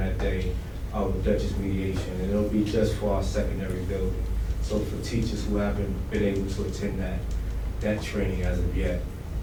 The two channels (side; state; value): both; identical; correlation 1.00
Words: day with Dutchess Mediation, and it'll be just for our secondary building. So for teachers who haven't been able to attend that, that training as of yet.